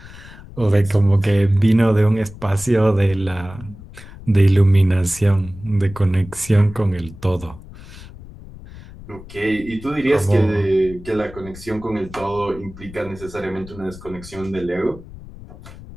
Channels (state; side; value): noise; left; rumble, 17 dB below the sound